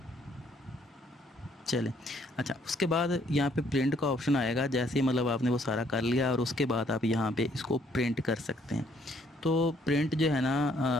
चलें। अच्छा, उसके बाद यहाँ पे प्रिंट का ऑप्शन आएगा। जैसे ही मतलब आपने वो सारा कर लिया और उसके बाद आप यहाँ पे इसको प्रिंट कर सकते हैं। तो प्रिंट जो है ना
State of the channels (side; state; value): both; normal; correlation 0.66